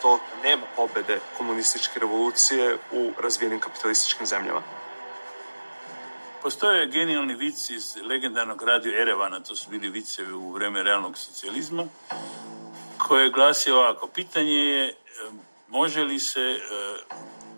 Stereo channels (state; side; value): inverted; both; correlation -1.00